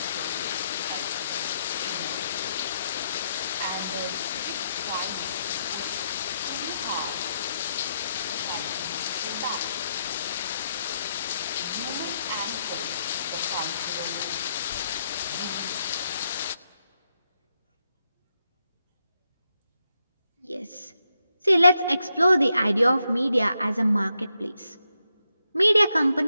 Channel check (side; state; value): both; inverted; correlation -0.81